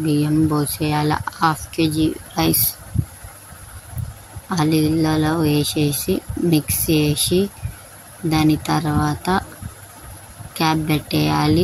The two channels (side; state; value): both; identical; correlation 1.00